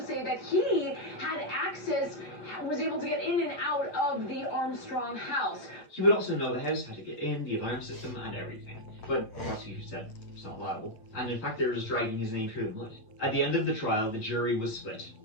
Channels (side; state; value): right; late; 8.4 ms